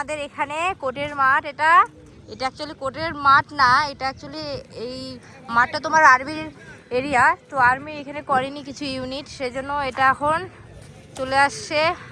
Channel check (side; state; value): both; identical; correlation 1.00